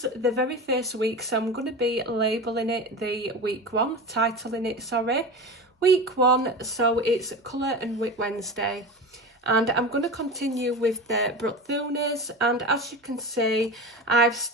the very first week, so I'm going to be labelling it the week 1, titling it week 1, so it's Colour and WIP Wednesday. And I'm going to continue with the Brookfuners, and as you can see I've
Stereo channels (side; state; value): both; normal; correlation 0.28